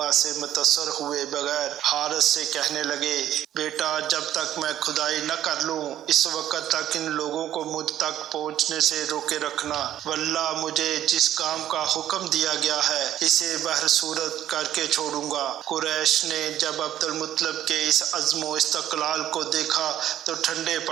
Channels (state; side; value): quieter; left; 11.9 dB